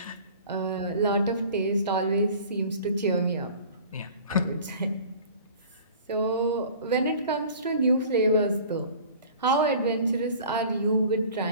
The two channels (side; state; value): both; inverted; correlation -0.45